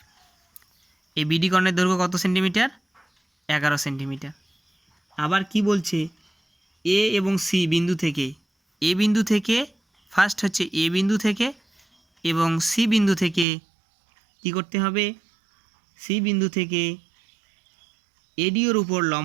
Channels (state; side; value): drops out; left; at 13.5 s